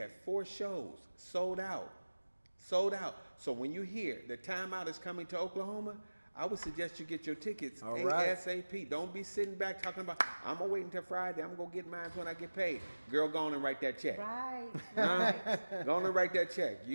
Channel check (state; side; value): inverted; both; correlation -1.00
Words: 4 shows sold out. Sold out. So when you hear the Timeout is coming to Oklahoma, I would suggest you get your tickets All right. ASAP. Don't be sitting back talking about, I'm going to wait until Friday. I'm going to get mine when I get paid. Girl, go on and write that check. Right. Go on and write that check.